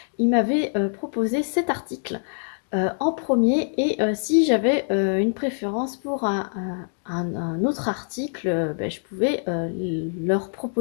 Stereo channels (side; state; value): right; silent; 62 dB below the other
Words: ils m'avaient proposé cet article en premier et si j'avais une préférence pour un autre article, ben, je pouvais leur